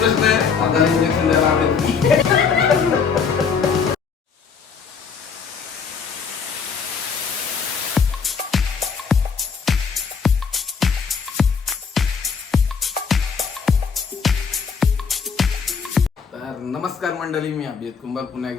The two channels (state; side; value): quieter; right; 5.9 dB